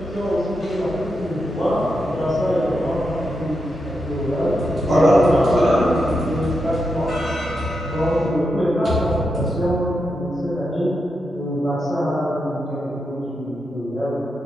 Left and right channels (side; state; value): both; normal; correlation 0.85